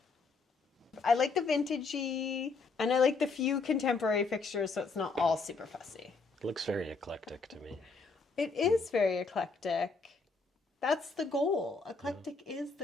I like the vintagey, and I like the few contemporary fixtures so it's not all super fussy. It looks very eclectic to me. It is very eclectic. That's the goal. Eclectic is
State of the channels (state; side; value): quieter; right; 4.3 dB